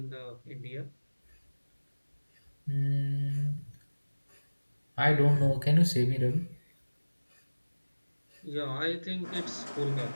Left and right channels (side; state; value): both; inverted; correlation -1.00